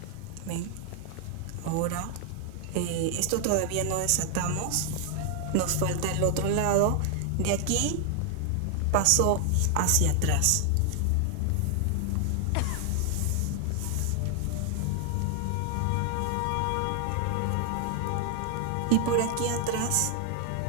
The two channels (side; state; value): both; different; correlation 0.00